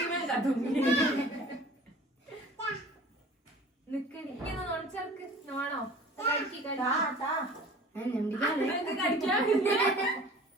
കത്തുങ്ങി നിക്കടി. ഇങ്ങനെ നോണിച്ചർക്ക് നോണോ കഴിക്കി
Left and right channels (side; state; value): both; normal; correlation 0.45